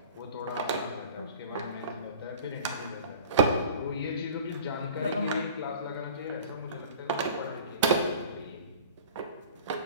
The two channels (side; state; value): both; inverted; correlation -0.42